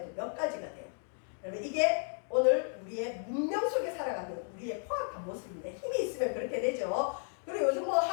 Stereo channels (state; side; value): silent; right; 55 dB below the other